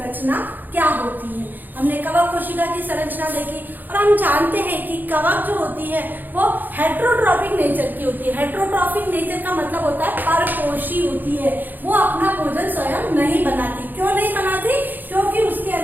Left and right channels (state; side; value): late; left; 0.087 ms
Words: क्या होती है। हमने कवक कोशिका की संरचना देखी और हम जानते हैं कि कवक जो होती है वो हेट्रोट्रॉफिक नेचर की होती है। हेट्रोट्रॉफिक नेचर का मतलब होता है परपोषी होती है, वो अपना भोजन स्वयं नहीं बनाती। क्यों नहीं बनाती? क्योंकि उसके